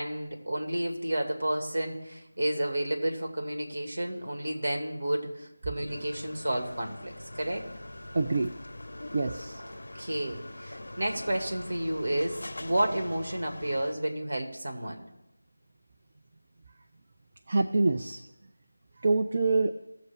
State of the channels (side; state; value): both; inverted; correlation -0.96